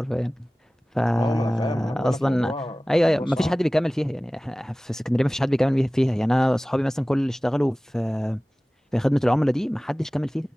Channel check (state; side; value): normal; both; correlation 0.98